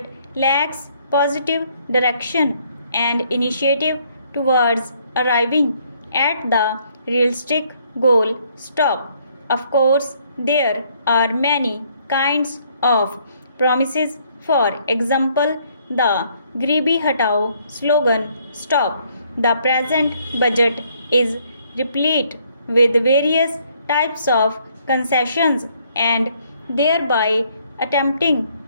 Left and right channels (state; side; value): inverted; both; correlation -0.67